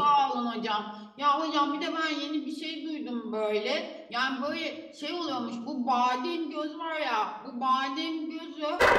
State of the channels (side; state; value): both; identical; correlation 1.00